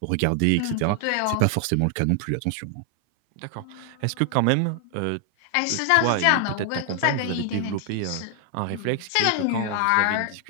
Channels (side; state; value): both; different; correlation 0.00